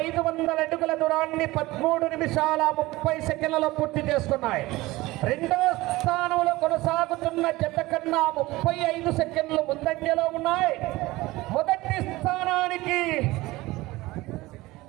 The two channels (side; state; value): left; quieter; 19.6 dB